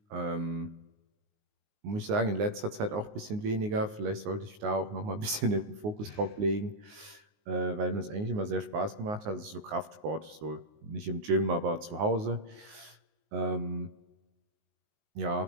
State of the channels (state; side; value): late; left; 19 ms